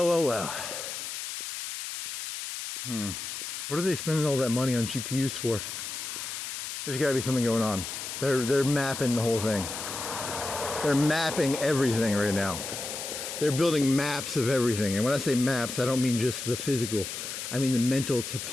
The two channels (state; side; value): noise; left; hiss, 6 dB below the sound